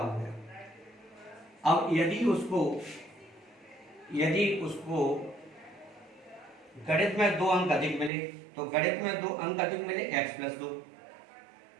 गया। अब यदि उसको गणित में 2 अंक अधिक मिले, तो गणित में 2 अंक अधिक मिले x प्लस 2,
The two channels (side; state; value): left; drops out; at 8.1 s